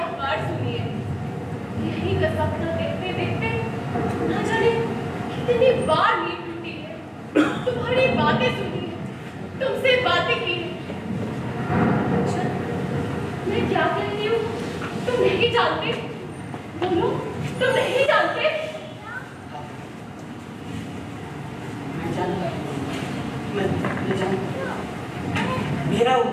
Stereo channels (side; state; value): both; identical; correlation 1.00